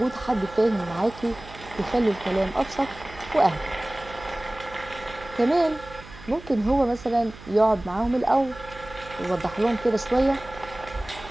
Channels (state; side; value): noise; right; hum, 18 dB below the sound